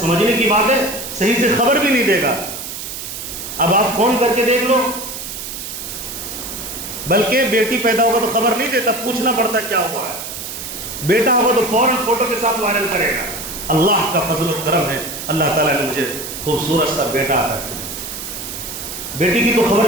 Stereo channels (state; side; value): noise; right; hiss, 8 dB below the sound